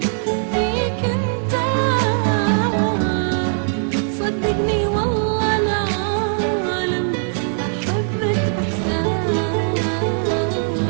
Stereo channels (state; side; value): silent; left; digital silence